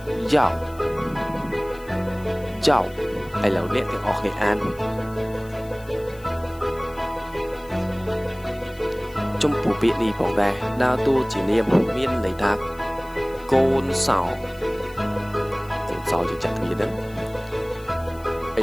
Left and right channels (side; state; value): left; noise; hiss, 24 dB below the sound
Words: យ៉ាវយ៉ាវឥឡូវអ្នកទាំងអស់គ្នាអានចំពោះពាក្យនេះផងដែរដើរតួជានាមមានន័យថាកូនសោយើងចាក់គ្នាហ្នឹងឥ